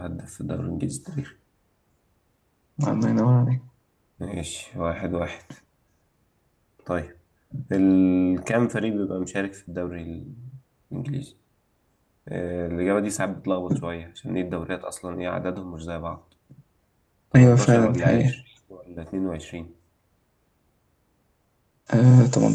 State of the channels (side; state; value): both; identical; correlation 1.00